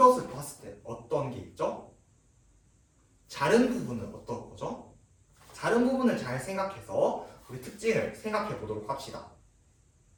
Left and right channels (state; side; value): identical; both; correlation 1.00